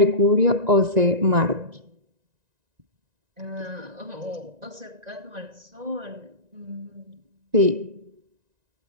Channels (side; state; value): left; late; 1.9 ms